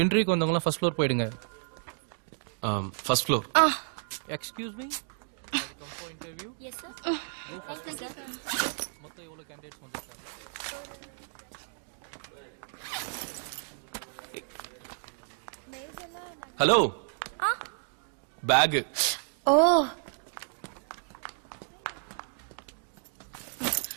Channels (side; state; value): left; silent; digital silence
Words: இன்டர்வியூக்கு வந்தவங்களாம் first floor போயிடுங்க. First floor. Excuse me, come for interview. Yes sir. மொத்தம் எவ்வளவு கேண்டிடேட்ஸ் வந்திருக்காங்க? ஹலோ. பேக். ஓ